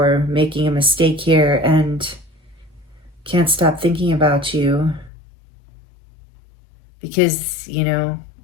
making a mistake here and can't stop thinking about you. Because,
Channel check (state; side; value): drops out; right; at 5.1 s